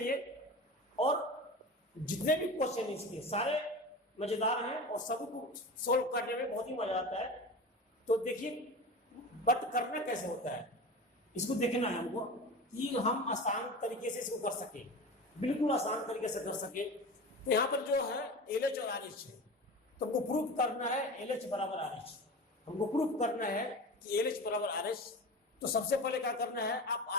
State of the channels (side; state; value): both; normal; correlation 0.30